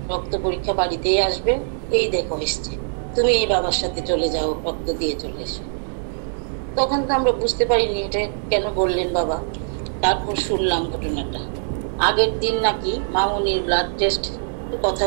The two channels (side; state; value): left; silent; digital silence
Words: রক্ত পরীক্ষা বাড়িতেই আসবে, এই দেখো এসছে, তুমি এই বাবার সাথে চলে যাও, রক্ত দিয়ে চলে এসো। তখন তো আমরা বুঝতে পারিনি এটা কেন বললেন বাবা। তারপর শুনলাম ঘটনাটা। আগের দিন নাকি মামুনির ব্লাড টেস্ট কথা